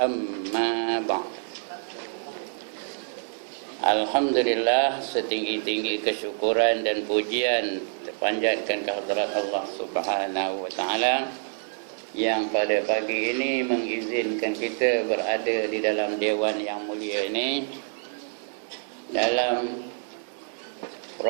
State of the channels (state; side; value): silent; left; 60 dB below the other